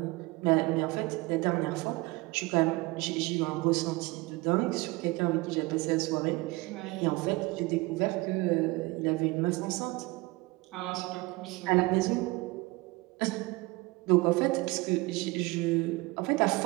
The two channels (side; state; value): left; quieter; 22.8 dB